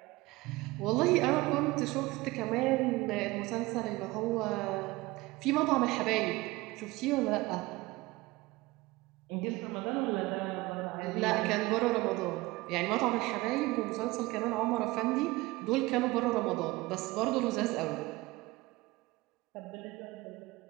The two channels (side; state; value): left; quieter; 20.8 dB